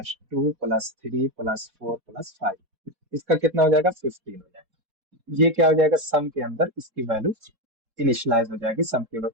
2 प्लस 3 प्लस 4 प्लस 5, इसका कितना हो जाएगा, 15 हो जाएगा। ये क्या हो जाएगा, सम के अंदर इसकी वैल्यू इनिशियलाइज हो जाएगी, सम के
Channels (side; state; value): left; late; 3.8 ms